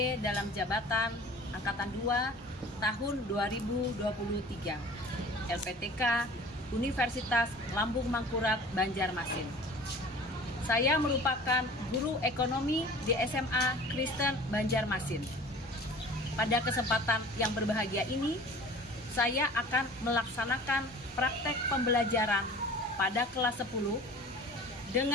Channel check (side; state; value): both; normal; correlation 0.44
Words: dalam jabatan Angkatan 2 tahun 2023 LPTK Universitas Lambung Mangkurat Banjarmasin. Saya merupakan guru ekonomi di SMA Kristen Banjarmasin. Pada kesempatan yang berbahagia ini, saya akan melaksanakan praktek pembelajaran pada kelas 10